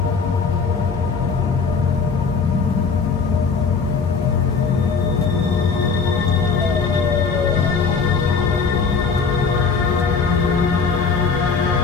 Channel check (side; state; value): right; quieter; 5.2 dB